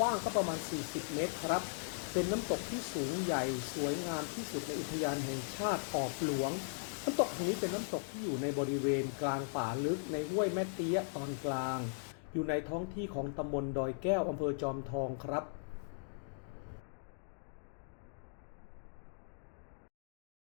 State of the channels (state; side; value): silent; right; digital silence